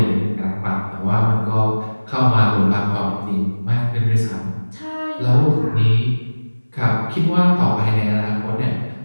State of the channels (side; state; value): both; inverted; correlation -1.00